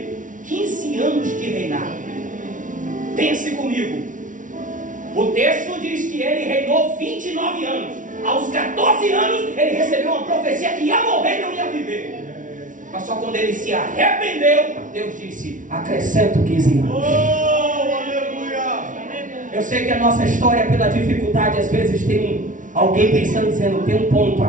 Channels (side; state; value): left; late; 0.38 ms